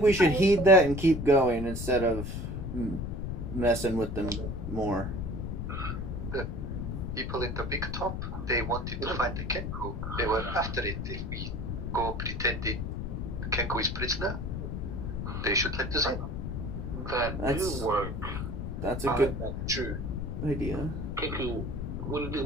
we should heed that and keep going instead of messing with them more. People in the big top, they wanted to find the Kenku. They were after it. If we go pretending the Kenku is prisoner, they should let us in. That That's- do work. That's a good True. idea. Kiku, what do you think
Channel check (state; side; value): noise; left; rumble, 4 dB below the sound